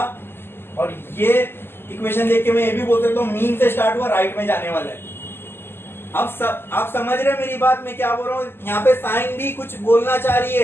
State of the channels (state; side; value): late; right; 0.11 ms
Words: और ये इक्वेशन देख के मैं ये भी बोल सकता हूँ मीन से स्टार्ट हुआ, राइट में जाने वाला है। अब आप समझ रहे हैं मेरी बात, मैं क्या बोल रहा हूँ, यहाँ पे साइन भी कुछ बोलना चाह रही